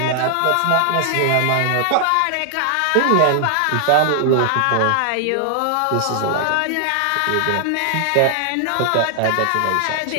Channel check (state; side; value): different; both; correlation 0.00